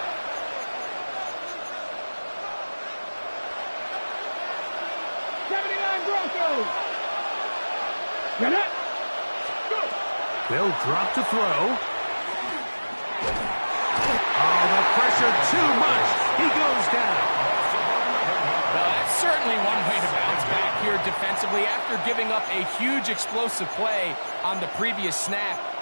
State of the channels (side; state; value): both; inverted; correlation -1.00